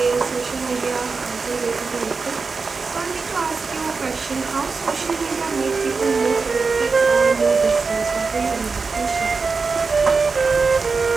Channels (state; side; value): quieter; left; 4.5 dB